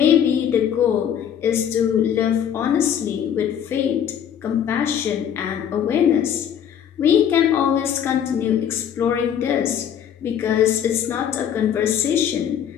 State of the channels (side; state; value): right; quieter; 9.0 dB